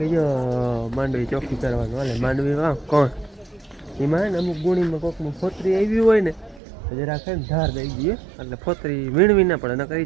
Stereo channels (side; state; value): left; drops out; at 6.6 s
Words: જો માંડવી ચોખ્ખી કરવાનું હાલે. માંડવી વાવ કોણ એમાં ને અમુક ગુણીમાં કોકનું ફોતરી આવી હોય ને જરાક ને ધાર દઈ દઈએ એટલે ફોતરી વીણવી ના પડે, નકર